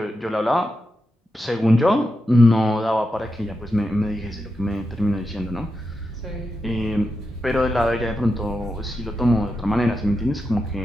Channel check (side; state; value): both; normal; correlation 0.88